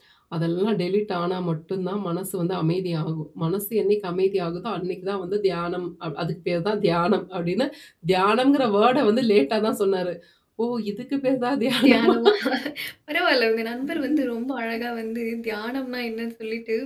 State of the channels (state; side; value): identical; both; correlation 1.00